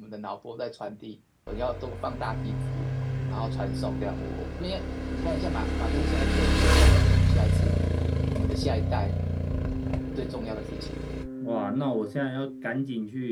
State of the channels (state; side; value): identical; both; correlation 1.00